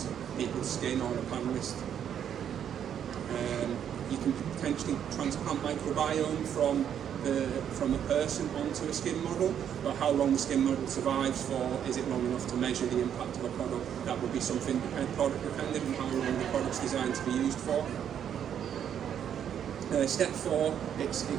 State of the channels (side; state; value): left; quieter; 9.1 dB